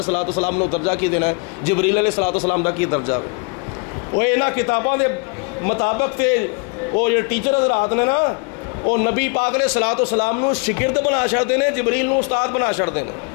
والسلام نے درجہ کی دینا ہے، جبریل علیہ الصلوۃ والسلام دا کی درجہ ہے۔ وہ انہاں کتاباں دے مطابق تے وہ جو ٹیچر حضرات نے نا وہ نبی پاک علیہ الصلوۃ والسلام نو شاگرد بنا چھڑدے نے، جبریل نو استاد بنا چھڑدے نے،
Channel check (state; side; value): quieter; right; 33.5 dB